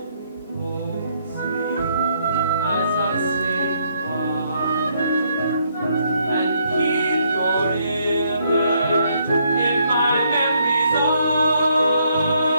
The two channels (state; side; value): inverted; both; correlation -0.72